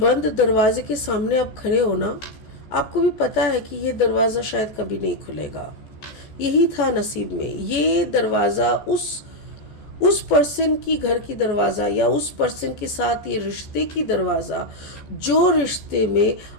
दरवाजे के सामने आप खड़े हो ना, आपको भी पता है कि ये दरवाज़ा शायद कभी नहीं खुलेगा। यही था नसीब में, ये दरवाज़ा उस पर्सन की घर की दरवाज़ा या उस पर्सन के साथ ये रिश्ते की दरवाज़ा, जो रिश्ते में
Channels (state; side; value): late; right; 14 ms